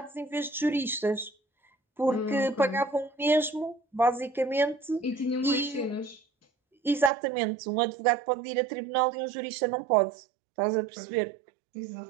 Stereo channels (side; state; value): left; drops out; at 7.1 s